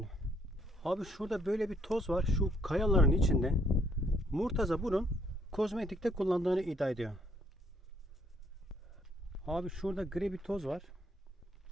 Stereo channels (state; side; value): normal; both; correlation 0.68